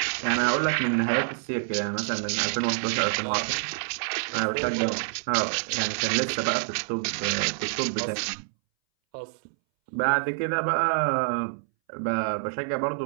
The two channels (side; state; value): left; silent; 60 dB below the other